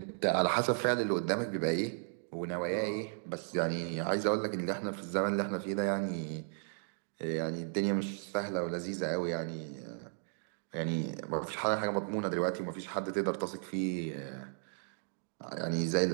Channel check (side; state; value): left; silent; digital silence